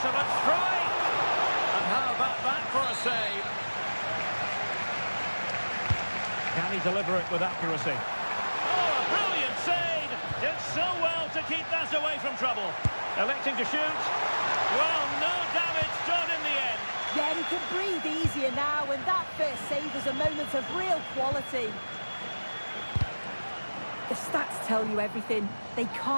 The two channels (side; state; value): both; inverted; correlation -1.00